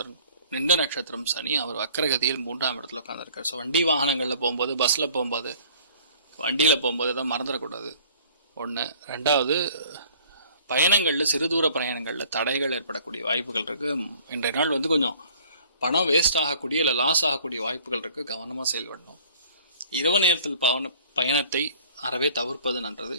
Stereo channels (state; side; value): inverted; both; correlation -0.53